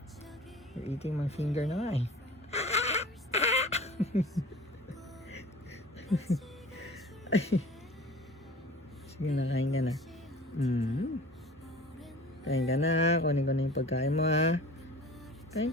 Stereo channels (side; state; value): both; normal; correlation 0.42